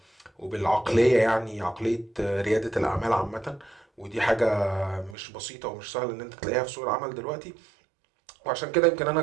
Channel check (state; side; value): drops out; left; at 5.2 s